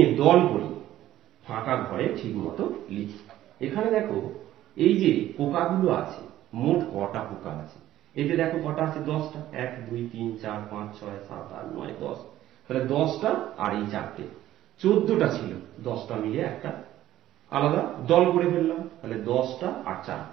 দল করি, ফাঁকা ঘরে ঠিক মতো লিখি। এখানে দেখো এই যে পোকাগুলো আছে, মোট কটা পোকা আছে, এতে দেখো কটা আছে, 10টা, 1 2 3 4 5 6 7 8 9 10, তাহলে 10টা আর এই 4টে 14টা ছিল, 10টা মিলে একটা আলাদা দল করে ফেললাম, তাহলে 10টা আর 4,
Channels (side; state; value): left; quieter; 13.7 dB